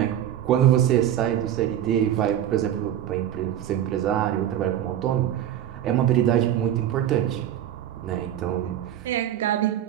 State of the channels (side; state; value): left; quieter; 11.1 dB